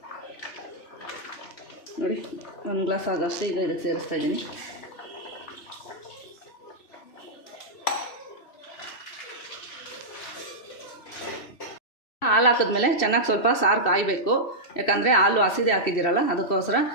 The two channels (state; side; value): late; right; 2.7 ms